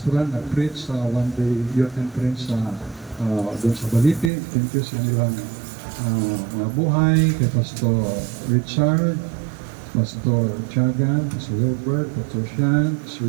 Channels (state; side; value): drops out; left; at 4.3 s